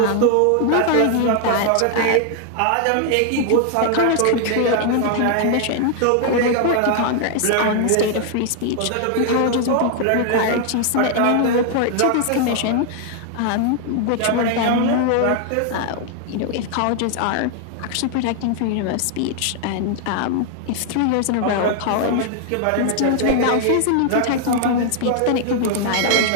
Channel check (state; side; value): different; both; correlation 0.00